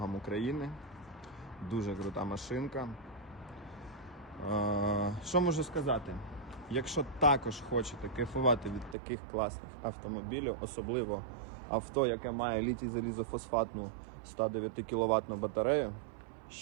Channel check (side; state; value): left; drops out; at 9.0 s